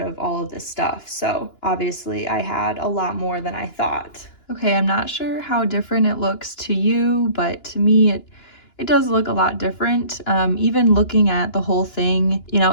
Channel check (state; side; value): late; right; 2.9 ms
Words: of all of this stuff. So obviously I had a lot more than I thought. Okay, I'm not sure how different it looks to you, but to me it does look a lot different. Even looking at the whole thing, you know,